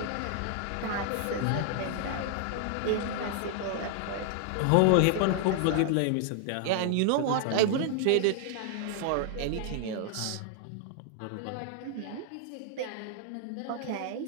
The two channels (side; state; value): both; different; correlation -0.01